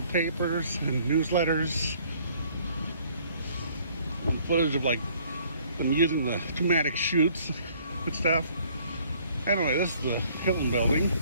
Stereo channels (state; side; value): inverted; both; correlation -0.60